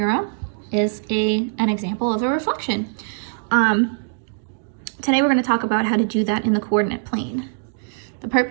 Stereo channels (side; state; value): left; silent; digital silence